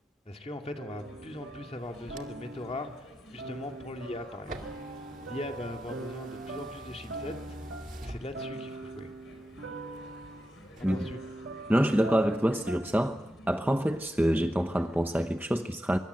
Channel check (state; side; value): normal; both; correlation 0.88